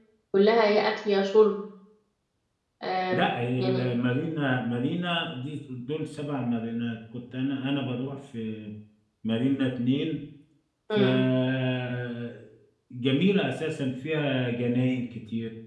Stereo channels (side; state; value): both; identical; correlation 1.00